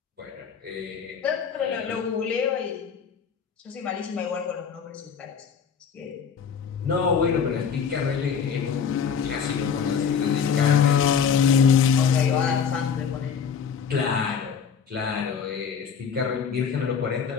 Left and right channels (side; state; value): right; quieter; 6.9 dB